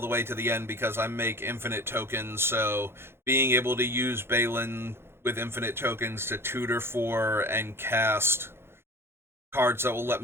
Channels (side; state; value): left; late; 0.12 ms